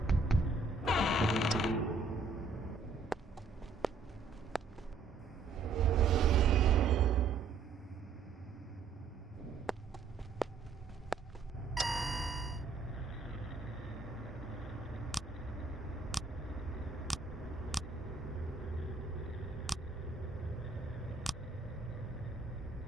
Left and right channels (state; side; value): quieter; left; 4.2 dB